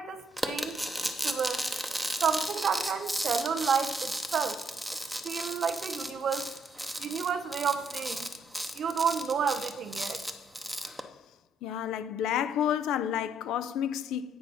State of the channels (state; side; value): normal; both; correlation 0.71